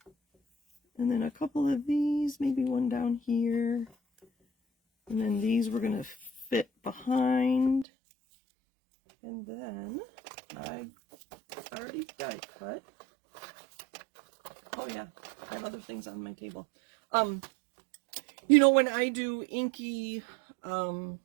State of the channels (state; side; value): drops out; left; at 7.9 s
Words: And then a couple of these, maybe one down here. And then these we're going to fit behind. And then I already die cut. Oh yeah, I have other things on my table. You know, when I do inky